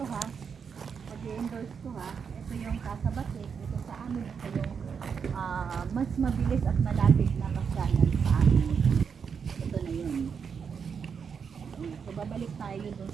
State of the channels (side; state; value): left; quieter; 6.5 dB